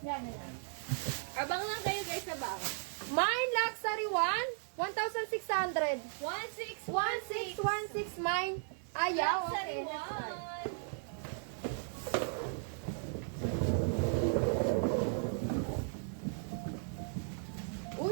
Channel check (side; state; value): left; silent; digital silence